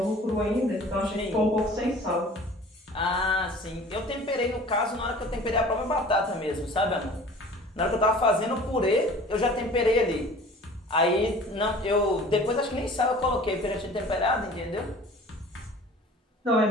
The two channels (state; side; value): normal; both; correlation 0.45